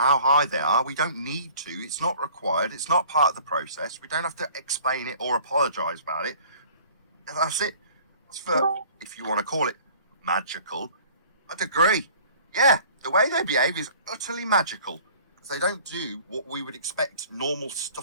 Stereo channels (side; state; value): both; inverted; correlation -0.50